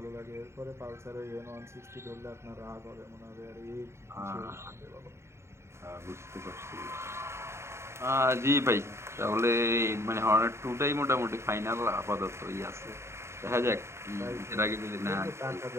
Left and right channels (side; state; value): left; late; 0.13 ms